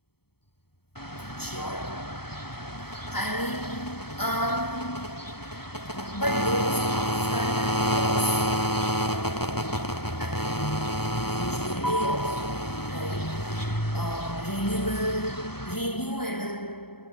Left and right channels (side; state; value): right; late; 0.96 ms